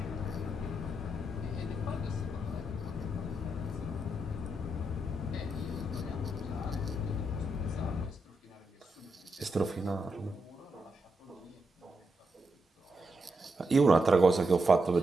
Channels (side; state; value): both; normal; correlation 0.83